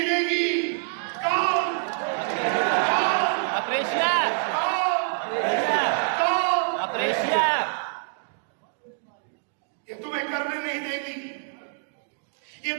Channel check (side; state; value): left; silent; digital silence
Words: देगी। कौन? ये तुम्हें करने नहीं देगी, ये